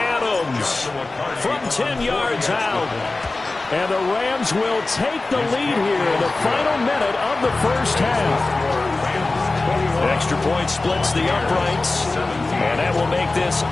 from 10 yards out. And the Rams will take the lead here in the final minute of the first half. Extra point splits the uprights, and that will make this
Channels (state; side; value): quieter; right; 3.3 dB